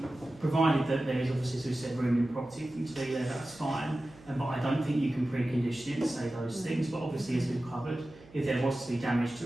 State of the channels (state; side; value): noise; right; hum, 23 dB below the sound